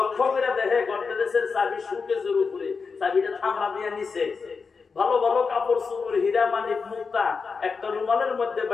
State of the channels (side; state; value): right; quieter; 5.0 dB